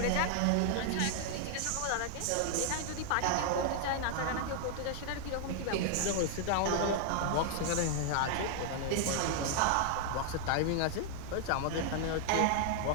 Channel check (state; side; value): different; both; correlation 0.00